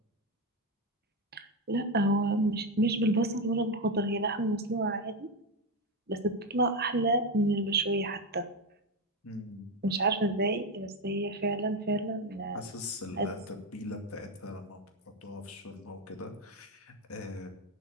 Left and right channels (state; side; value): normal; both; correlation 0.11